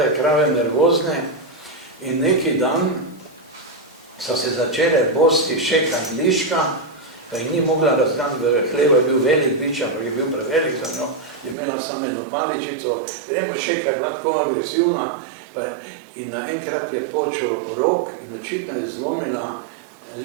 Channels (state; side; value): drops out; left; at 11.6 s